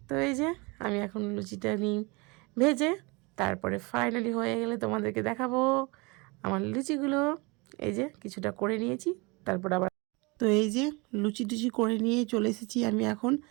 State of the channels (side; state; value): left; quieter; 27.3 dB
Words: তো এই যে আমি এখন লুচিটা নিই ভেজে, তারপরে ফাইনালি হয়ে গেলে তোমাদেরকে দেখাবো আমার লুচিগুলো। এই যে কিছুটা করে নিয়েছি, তারপর আবার তো এই যে লুচি টুচি করে নিয়ে চলে এসেছি আমি এখন